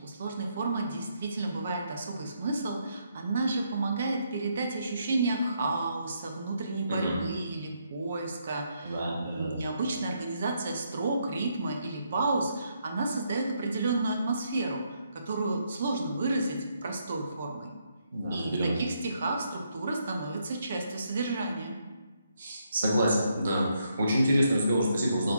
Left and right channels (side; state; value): both; inverted; correlation -0.76